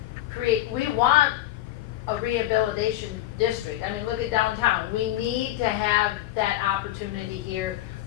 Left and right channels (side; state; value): right; quieter; 14.7 dB